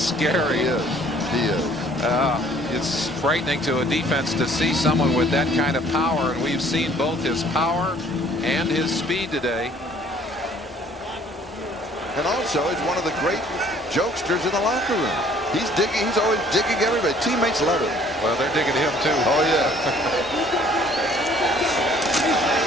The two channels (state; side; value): normal; both; correlation 0.57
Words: He is. It's frightening to a defense to see someone with that kind of power, and we've seen both his power and his speed today. And also, he's one of the great jokesters in the locker room. He's digging. He's always digging everybody. Teammates love him. Well, they're digging him too. Oh yeah.